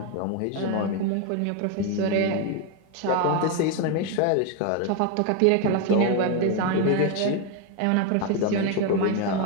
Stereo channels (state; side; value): different; both; correlation 0.01